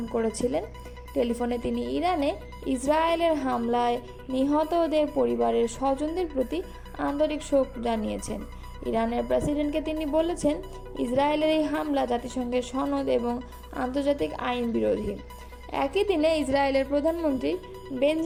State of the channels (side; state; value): both; identical; correlation 1.00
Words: করেছিলেন। টেলিফোনে তিনি ইরানে ইসরায়েলের হামলায় নিহতদের পরিবারের স্বজনদের প্রতি আন্তরিক শোক জানিয়েছেন। ইরানের প্রেসিডেন্টকে তিনি বলেছেন, ইসরায়েলের এই হামলা জাতিসংঘের সনদ এবং আন্তর্জাতিক আইন বিরোধী। একই দিনে ইসরায়েলের প্রধানমন্ত্রী